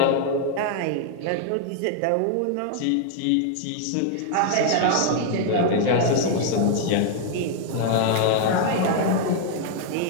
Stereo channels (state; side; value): different; both; correlation 0.00